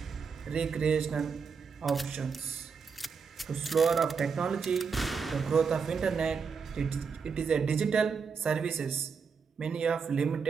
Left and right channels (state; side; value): quieter; left; 5.6 dB